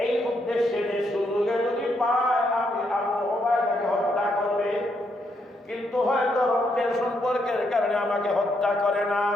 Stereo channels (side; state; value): both; normal; correlation 0.77